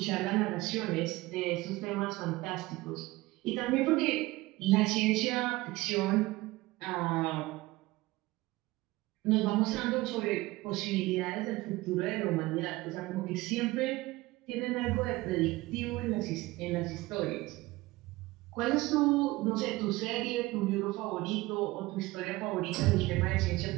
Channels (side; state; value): left; quieter; 19.9 dB